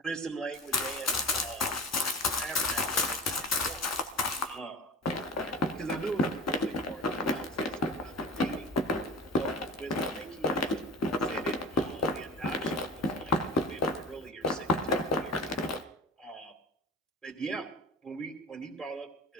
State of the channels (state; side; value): normal; both; correlation 0.36